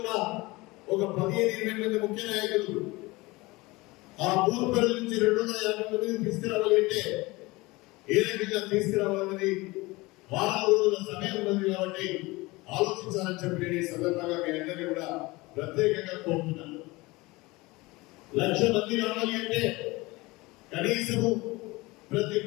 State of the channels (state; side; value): quieter; right; 22.2 dB